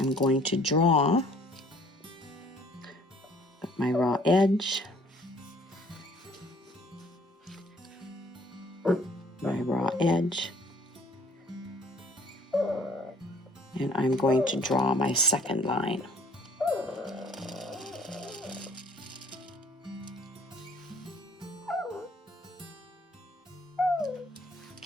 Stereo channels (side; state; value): both; normal; correlation 0.57